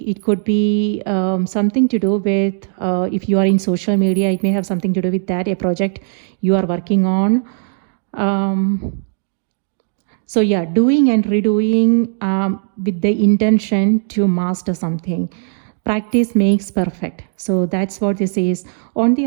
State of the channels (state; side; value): silent; left; 68 dB below the other